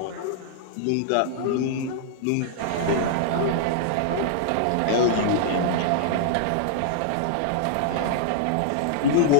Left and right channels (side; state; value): both; different; correlation -0.01